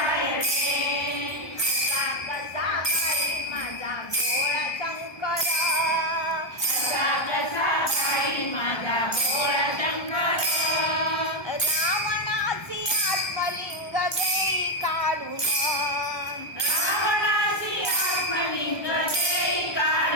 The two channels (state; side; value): late; right; 1.3 ms